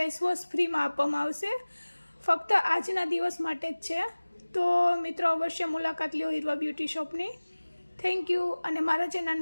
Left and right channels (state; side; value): inverted; both; correlation -1.00